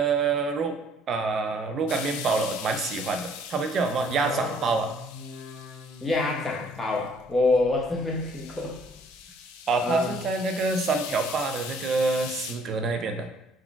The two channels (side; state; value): both; normal; correlation 0.60